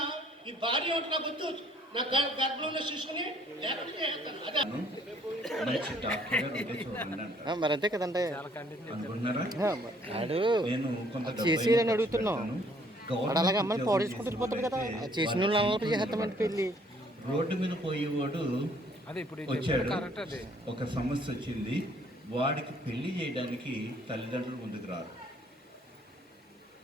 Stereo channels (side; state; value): both; normal; correlation 0.62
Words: ఈ భార్య ఒకటి నాకు వద్దు, నా గర్భంలో చూసుకుని మరి అంతే కదండి అనుకుంటున్నారా? నేను చేసి అడుగుతున్నాను. వాడు అలాగే అమ్మాయిని పాడేసుకుంటూ వెళ్ళిపోతాడు కదా, చేసిన వాళ్ళు అమలు చేస్తామంటే పెళ్ళి. రోడ్డు మీద పోయేవాడు వచ్చాడు, ఒక సమస్య వచ్చింది, వాడికి పెళ్లి చేయడానికి తల్లిదండ్రులు ముందుకు రారు.